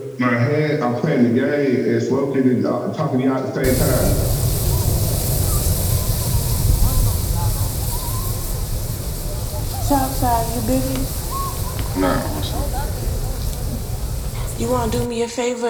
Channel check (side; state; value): both; identical; correlation 1.00